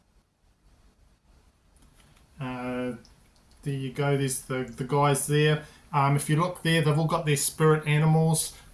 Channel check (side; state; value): both; identical; correlation 1.00